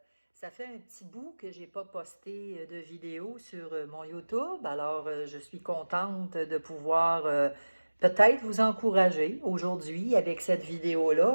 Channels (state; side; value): inverted; both; correlation -1.00